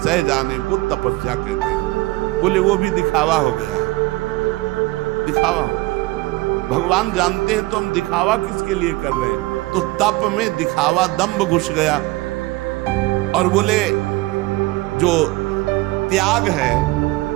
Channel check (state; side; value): quieter; left; 20.6 dB